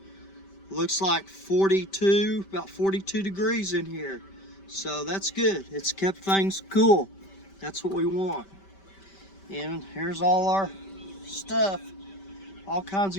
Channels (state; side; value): late; right; 5.1 ms